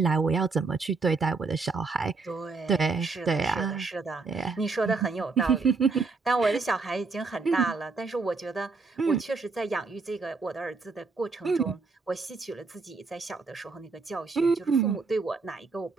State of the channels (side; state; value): left; quieter; 4.2 dB